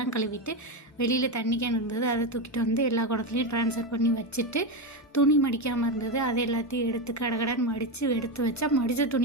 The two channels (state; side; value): normal; both; correlation 0.13